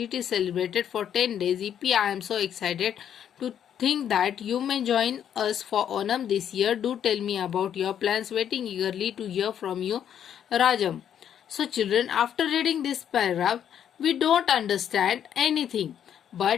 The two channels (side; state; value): right; quieter; 9.4 dB